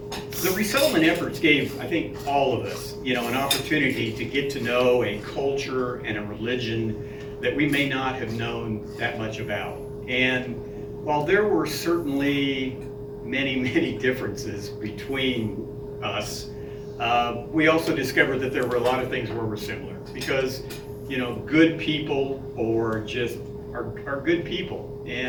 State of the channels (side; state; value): both; identical; correlation 1.00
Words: The resettlement efforts gave, I think, all of us, an opportunity to get to know a culture and a religion that we may not have known that much about. And while there were certainly many, many differences between us, we also discovered that there were a lot of things where we're similar. Because, good people are good people.